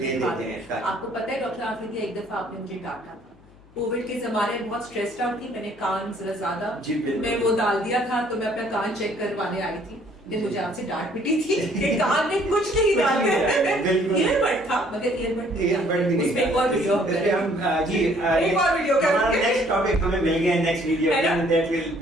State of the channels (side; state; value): left; noise; hum, 28 dB below the sound